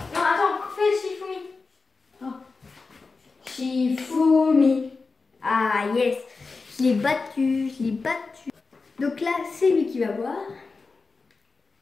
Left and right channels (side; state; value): right; quieter; 4.2 dB